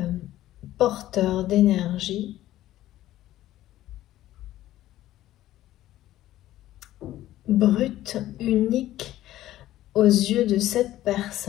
porteur d'énergie brute, unique aux yeux de cette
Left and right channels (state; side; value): quieter; right; 14.2 dB